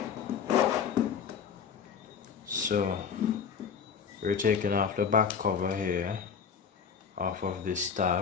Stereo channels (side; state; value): right; quieter; 6.8 dB